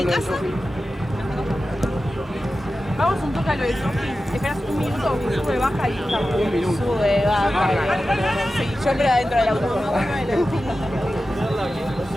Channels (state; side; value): normal; both; correlation 0.93